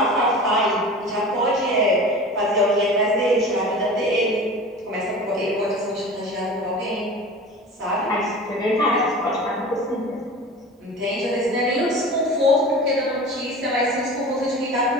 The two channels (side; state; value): both; normal; correlation 0.36